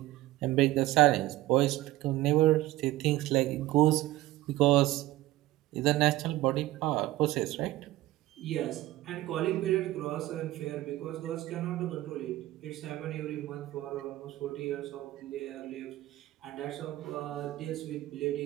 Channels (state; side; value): quieter; left; 16.7 dB